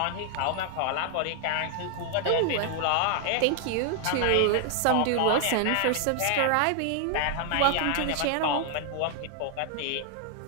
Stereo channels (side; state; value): both; different; correlation 0.00